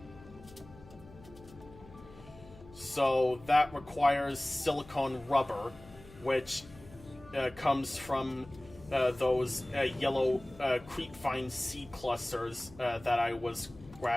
So that requires silicone rubber, which comes from those yellow creepvine seed clusters that I was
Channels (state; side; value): noise; left; hum, 20 dB below the sound